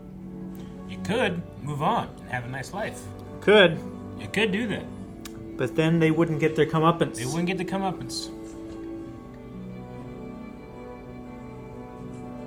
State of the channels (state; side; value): identical; both; correlation 1.00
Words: You could move on and have a nice life. Could. You could do that. But then they wouldn't get their comeuppance. They wouldn't get the comeuppance.